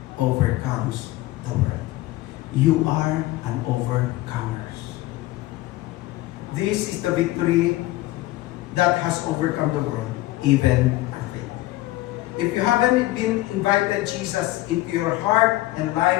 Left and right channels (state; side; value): quieter; right; 17.4 dB